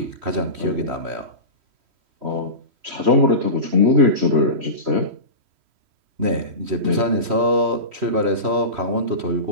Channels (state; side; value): late; left; 3.1 ms